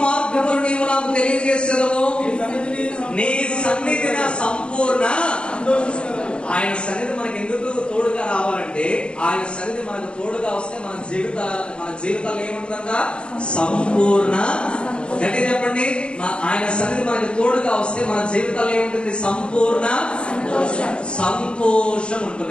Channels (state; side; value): late; right; 0.054 ms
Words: మార్గములు నీవు నాకు తెలియజేసేదవు, నీ సన్నిధి నా సంపూర్ణ. ఆయన సన్నిధి మనకి ఎందుకు తోడుగా రావాలంటే, ఆయన సన్నిధి మనకు తోడుగా వస్తే మన జీవితాలు ఏముంటుందంట? సంపూర్ణ. గట్టి చెప్పండి. ఆయన సన్నిధి మనకి తోడుగా వస్తే మన జీవితాలు ఏముంటుంది? సంపూర్ణ సంతోషం